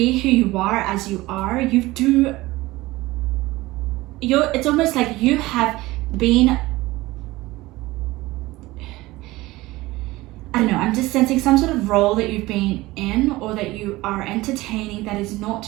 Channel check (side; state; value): left; quieter; 19.3 dB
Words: who you are as you are, it's almost like you have been, I don't know, I'm just sensing some sort of role that you've been in or that you are entertaining that is